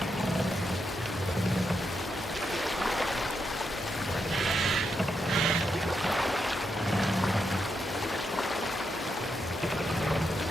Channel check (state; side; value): normal; both; correlation 0.83